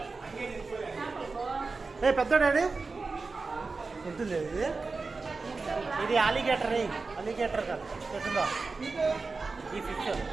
ఏ పెద్దోడాడి ఎంత లేదు ఇది. ఇది అలిగేటర్. అలిగేటర్ కాదు ఎట్టుందో ఈ ఫిష్.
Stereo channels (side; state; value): left; quieter; 4.1 dB